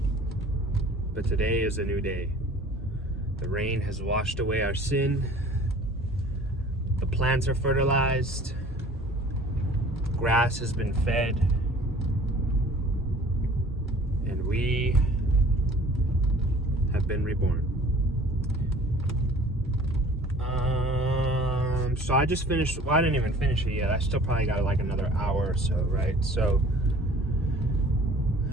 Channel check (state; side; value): normal; both; correlation 0.49